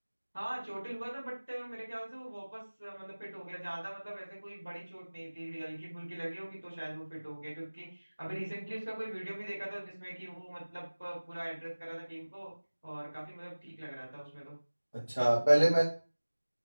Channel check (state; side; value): inverted; both; correlation -1.00